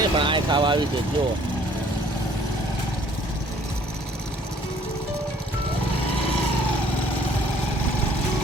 પણ આ ખાવા આવી છે. જો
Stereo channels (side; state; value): both; normal; correlation 0.58